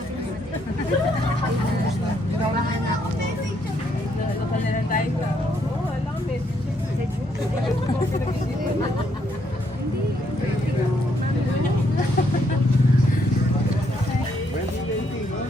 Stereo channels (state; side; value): normal; both; correlation 0.73